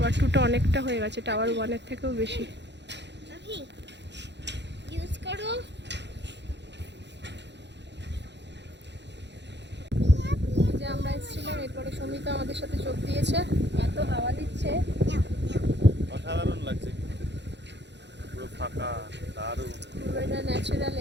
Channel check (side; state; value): left; late; 0.51 ms